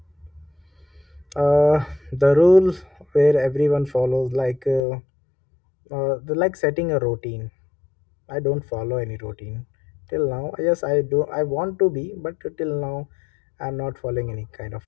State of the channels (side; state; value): right; drops out; at 4.8 s